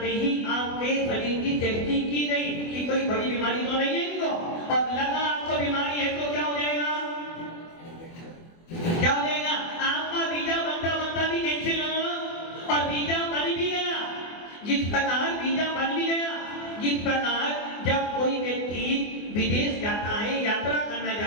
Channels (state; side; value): late; right; 24 ms